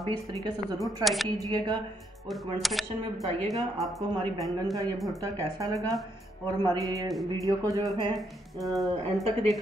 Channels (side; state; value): both; normal; correlation 0.75